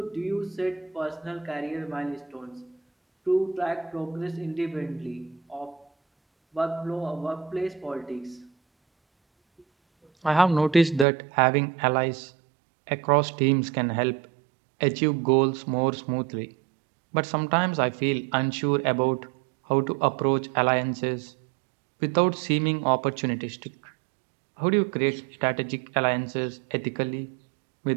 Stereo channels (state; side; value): drops out; left; at 11.1 s